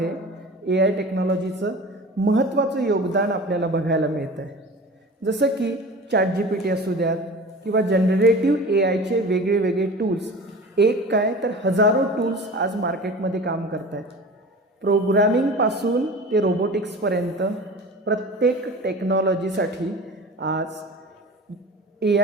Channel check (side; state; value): both; normal; correlation 0.37